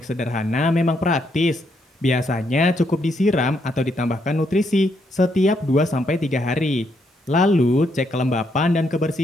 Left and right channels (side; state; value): both; normal; correlation 0.76